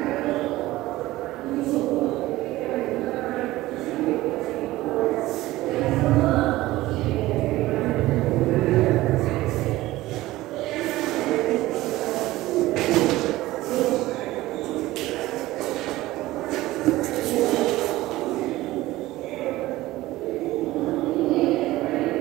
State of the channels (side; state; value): left; quieter; 17.4 dB